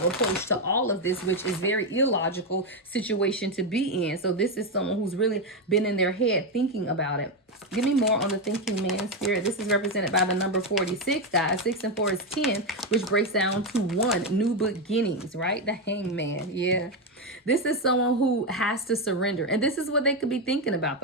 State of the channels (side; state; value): both; normal; correlation 0.08